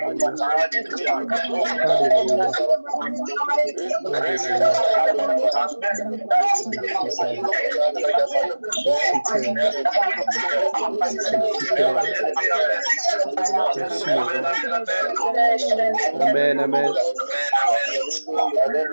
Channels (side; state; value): both; inverted; correlation -1.00